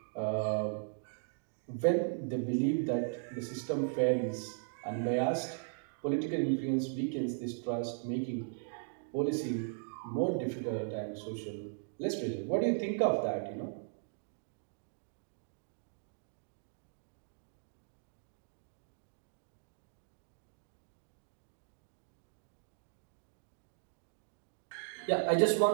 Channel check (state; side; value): silent; left; digital silence